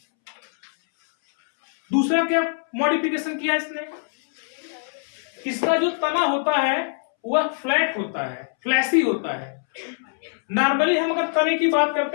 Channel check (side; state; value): right; silent; 63 dB below the other